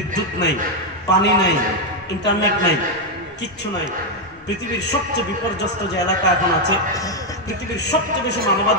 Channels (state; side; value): normal; both; correlation 0.03